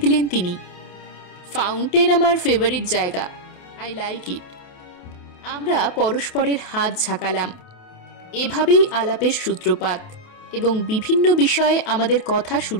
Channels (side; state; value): right; late; 28 ms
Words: দিলেন তিনি। ফাউন্টেন আমার ফেভারিট জায়গা, আই লাইক ইট। আমরা পরস্পরের হাত ঝাঁকালাম। এভাবেই আলাপের সূত্রপাত, এবং বিভিন্ন বিষয়ে আমাদের কথা